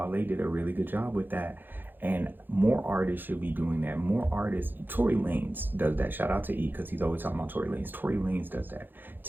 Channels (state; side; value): late; left; 0.093 ms